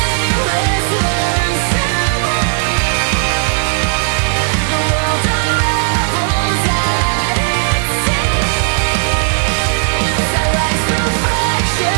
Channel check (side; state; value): left; silent; digital silence